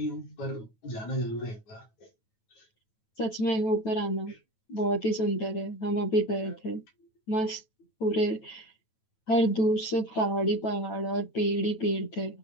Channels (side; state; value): right; late; 9.2 ms